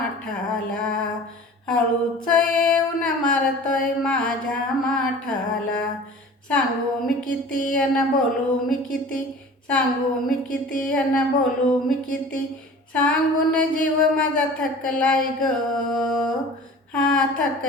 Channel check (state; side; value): normal; both; correlation 0.42